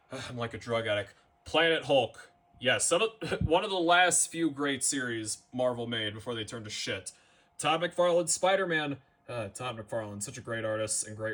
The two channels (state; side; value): identical; both; correlation 1.00